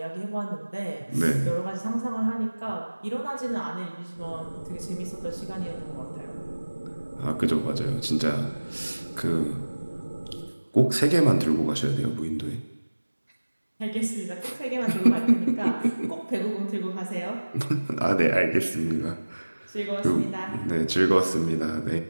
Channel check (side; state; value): both; inverted; correlation -1.00